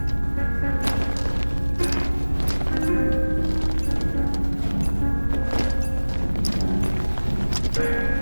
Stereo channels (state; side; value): inverted; both; correlation -1.00